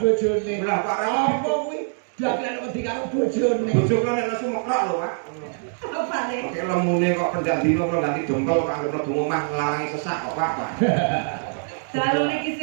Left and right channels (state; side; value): silent; left; 62 dB below the other